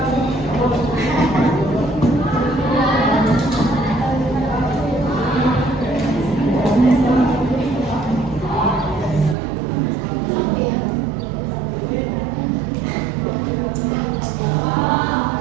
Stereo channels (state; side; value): drops out; left; at 9.3 s